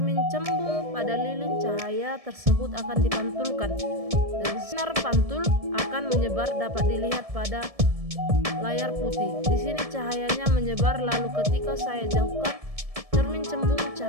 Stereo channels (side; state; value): left; late; 1.7 ms